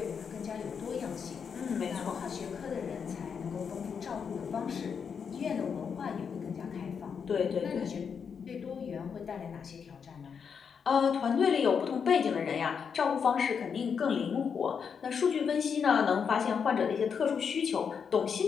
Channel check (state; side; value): quieter; right; 6.6 dB